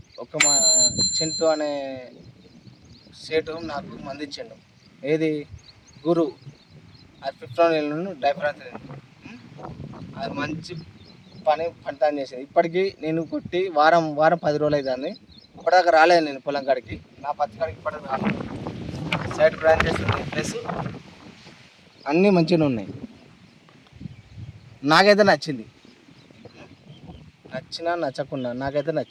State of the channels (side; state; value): both; identical; correlation 1.00